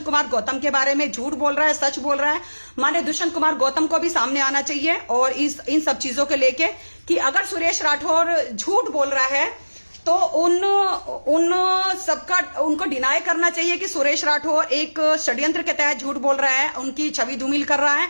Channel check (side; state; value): both; inverted; correlation -1.00